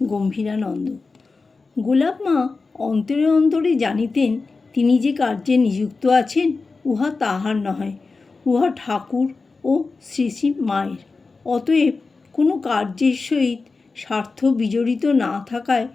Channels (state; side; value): quieter; right; 4.1 dB